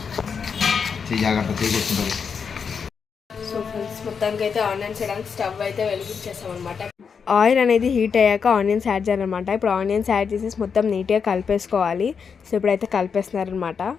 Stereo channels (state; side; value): quieter; right; 6.2 dB